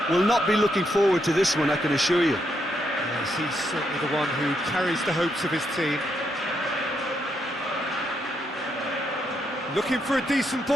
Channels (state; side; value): normal; both; correlation 0.79